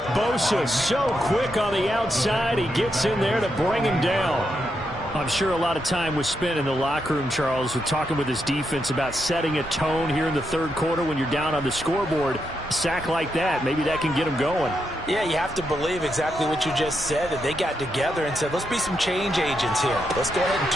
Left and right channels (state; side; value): normal; both; correlation 0.82